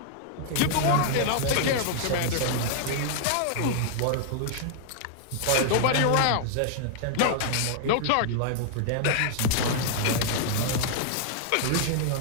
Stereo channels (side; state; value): both; different; correlation -0.01